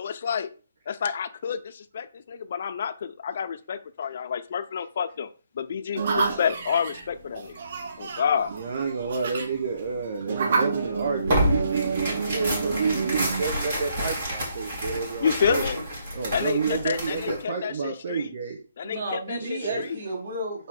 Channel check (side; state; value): both; inverted; correlation -0.70